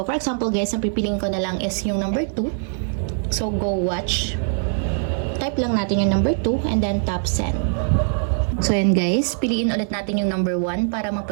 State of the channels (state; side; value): silent; left; 64 dB below the other